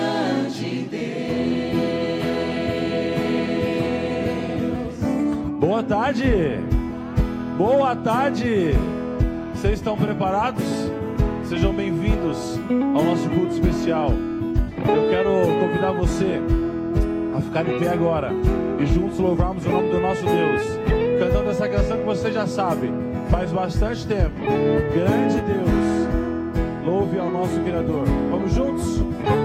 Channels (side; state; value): both; identical; correlation 1.00